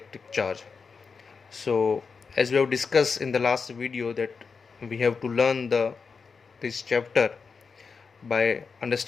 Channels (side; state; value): right; quieter; 5.2 dB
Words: charge. So as we have discussed in the last video that we have to learn this chapter by